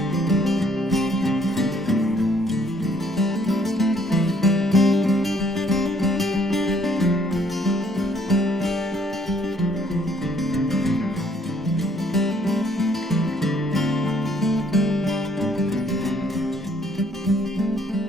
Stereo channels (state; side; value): normal; both; correlation 0.64